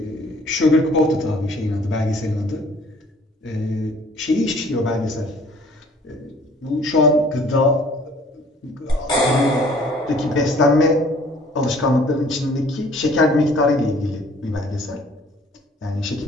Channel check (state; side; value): normal; both; correlation 0.55